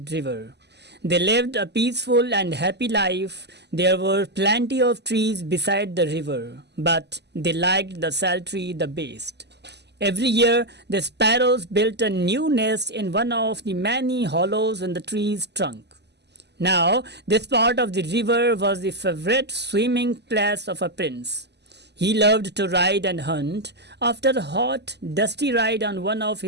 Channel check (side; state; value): left; late; 0.50 ms